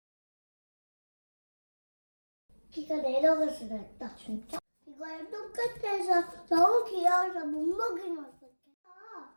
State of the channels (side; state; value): both; inverted; correlation -1.00